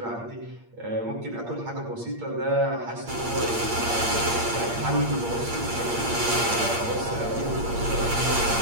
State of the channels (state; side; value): late; left; 8.6 ms